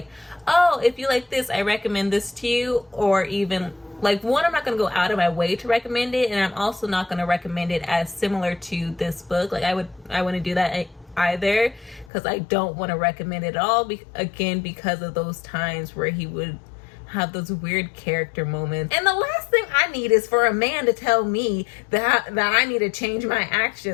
oh, if you like this, I recommend this to you. Or even like, one, I'm not gonna go out of my way to recommend it, and I'm also not gonna recommend it as similar to this book. Like, I wouldn't do that either, because I don't want to recommend it at all, again, because of those times where he would have those weird character moments. And the last thing I need is for a man to tell me that I need to change my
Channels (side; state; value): right; drops out; at 12.1 s